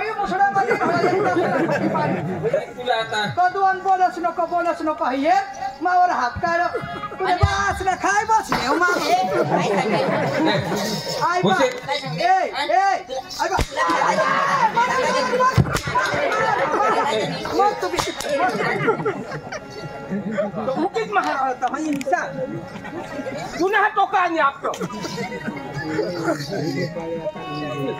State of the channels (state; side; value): identical; both; correlation 1.00